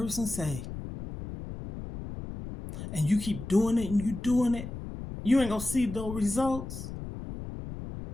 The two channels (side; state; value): left; noise; rumble, 9 dB below the sound